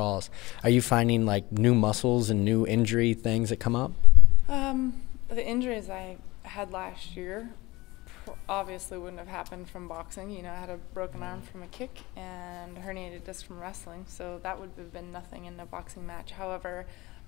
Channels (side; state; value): right; quieter; 20.9 dB